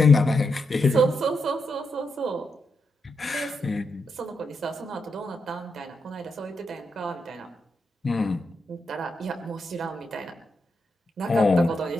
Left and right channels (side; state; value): both; normal; correlation 0.84